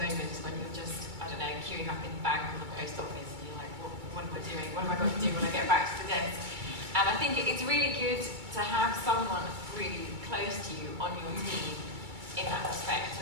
when you're just, I don't know, queuing up in the bank or the post office and you're like, what am I doing? What am I going to do when I get back to the desk? And I think it's really good to have someone really close to you on your team in that respect.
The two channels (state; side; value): late; left; 2.3 ms